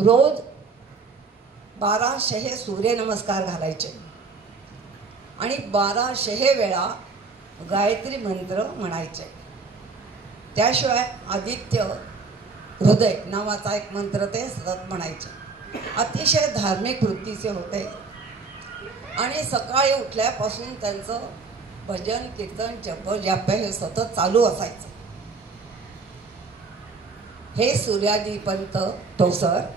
1200 सूर्यनमस्कार घालायचे आणि 1200 वेळा गायत्री मंत्र म्हणायचे. त्याशिवाय आदित्य हृदय नावाचा एक मंत्र ते सतत म्हणायचे. अतिशय धार्मिक वृत्तीचे होते आणि सकाळी उठल्यापासून त्यांचं भजन कीर्तन जप हे सतत चालू असायचं. हे सूर्याजी पंत ठोसर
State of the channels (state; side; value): quieter; left; 4.4 dB